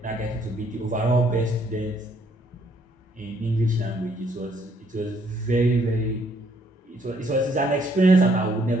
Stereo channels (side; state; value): both; normal; correlation 0.67